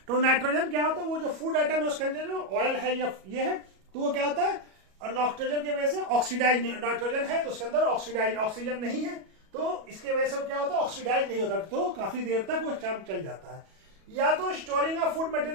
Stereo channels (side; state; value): left; late; 37 ms